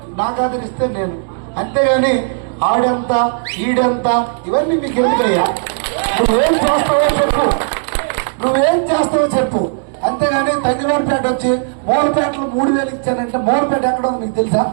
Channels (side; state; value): left; silent; digital silence